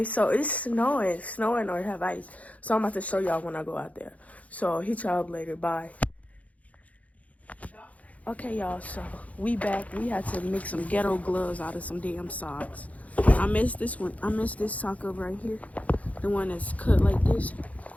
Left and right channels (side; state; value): right; late; 0.069 ms